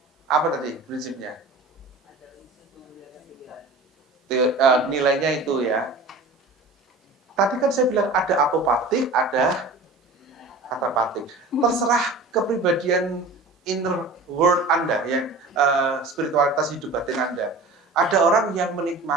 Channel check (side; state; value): left; quieter; 3.1 dB